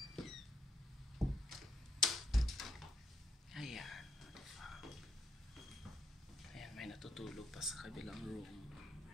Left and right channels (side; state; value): both; normal; correlation 0.78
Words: May natutulog pa sa kabilang room.